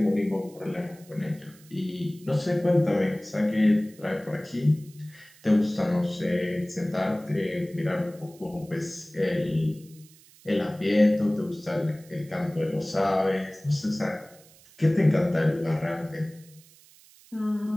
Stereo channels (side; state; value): right; noise; hiss, 25 dB below the sound